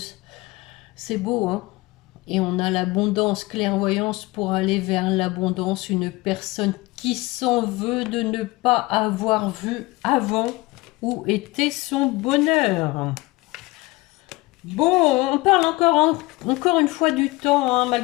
C'est beau, hein. Et on a l'abondance, clairvoyance pour aller vers l'abondance. Une personne qui s'en veut de ne pas avoir vu avant où était son bonheur. Bon, on parle encore une fois du temps, hein,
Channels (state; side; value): quieter; right; 22.0 dB